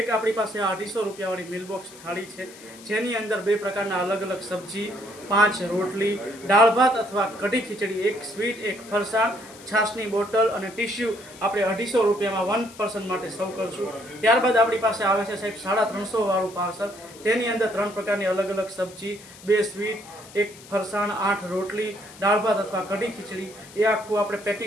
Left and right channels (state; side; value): noise; left; hiss, 20 dB below the sound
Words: આપણી પાસે 250 રૂપિયાવાળી મિલબોક્સ થાળી છે, જેની અંદર 2 પ્રકારના અલગ અલગ સબ્જી, 5 રોટલી, દાળ ભાત અથવા કઢી ખીચડી, 1 સ્વીટ, 1 ફરસાણ, છાશની બોટલ અને ટિશ્યુ આપણે 250 રૂપિયામાં 1 પર્સન માટે સર્વ કરશું. ત્યારબાદ આપણી પાસે આવે છે સાહેબ 350 વાળું પાર્સલ. તેની અંદર 3 પ્રકારની અલગ અલગ સબ્જી, 2 સ્વીટ, 1 ફરસાણ, 8 રોટલી, દાળ ભાત અથવા કઢી ખીચડી, એ આખું આપણે